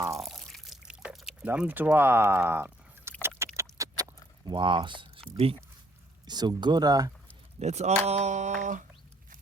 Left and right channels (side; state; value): both; normal; correlation 0.67